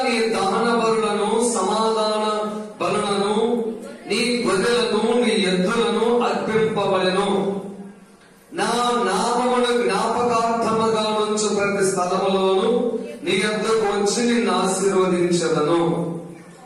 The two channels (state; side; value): identical; both; correlation 1.00